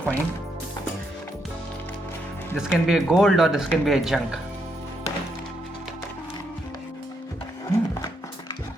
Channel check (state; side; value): normal; both; correlation 0.78